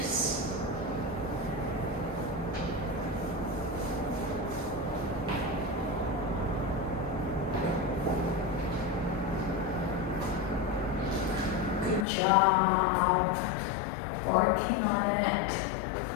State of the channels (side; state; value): right; drops out; at 12.1 s